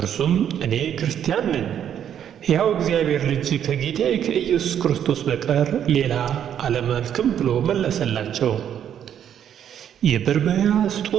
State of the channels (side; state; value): left; quieter; 9.5 dB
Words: እኔ ክርስቲያን ነኝ፣ ሕያው እግዚአብሔር ልጅ ከጌታዬ ከኢየሱስ ክርስቶስ በቀር ሌላ አላመልክም ብሎ መለሰላቸው።